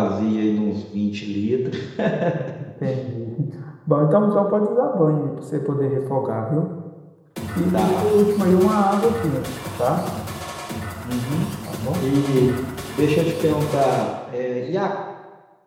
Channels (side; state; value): both; identical; correlation 1.00